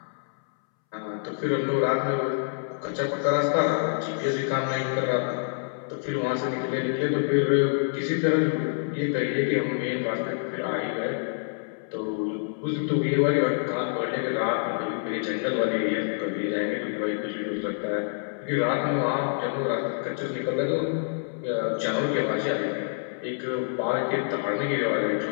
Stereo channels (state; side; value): silent; right; 60 dB below the other